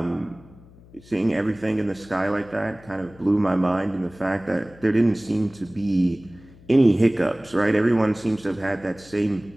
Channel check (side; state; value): left; noise; hum, 24 dB below the sound